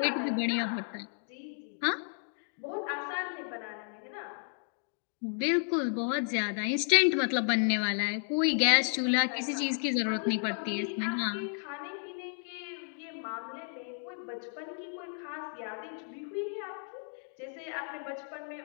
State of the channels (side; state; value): right; silent; 56 dB below the other